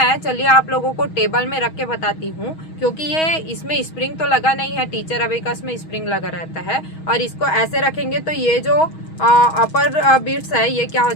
चलिए आप लोगों को टेबल में रख के बताती हूँ, क्योंकि ये इसमें स्प्रिंग तो लगा नहीं है, टीचर अबेकस में स्प्रिंग लगा रहता है। और इसको ऐसे रखेंगे तो ये जो अपर बीट्स है ये क्या हो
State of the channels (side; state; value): right; late; 6.3 ms